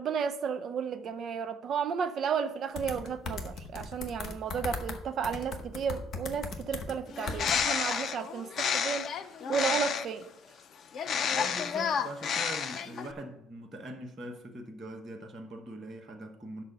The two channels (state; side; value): normal; both; correlation 0.62